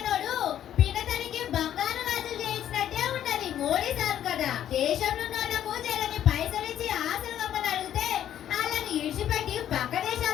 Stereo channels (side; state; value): right; quieter; 10.9 dB